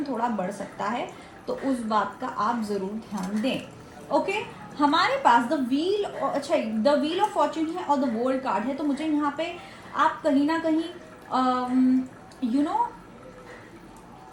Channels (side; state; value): both; identical; correlation 1.00